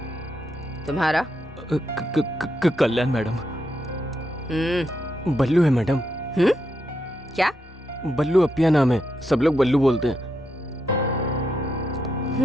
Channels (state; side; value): normal; both; correlation 0.82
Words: तुम्हारा? कल्याण मैडम। बल्लू है मैडम। क्या? बल्लू अपिया नाम है, सब लोग बल्लू बोलते हैं।